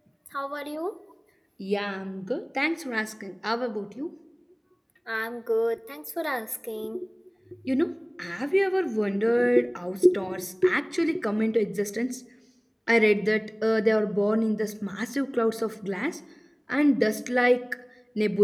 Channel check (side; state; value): both; identical; correlation 1.00